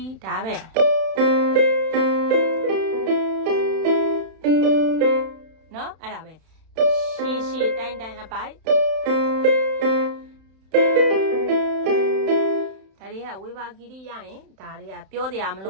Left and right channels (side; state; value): left; late; 31 ms